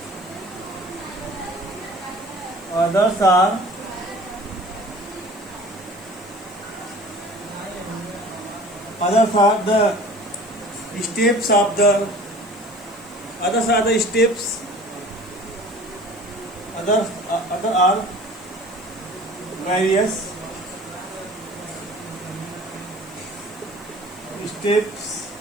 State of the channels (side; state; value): right; noise; hiss, 25 dB below the sound